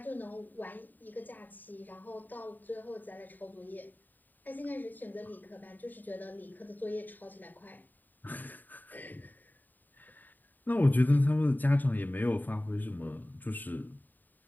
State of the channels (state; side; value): late; right; 0.088 ms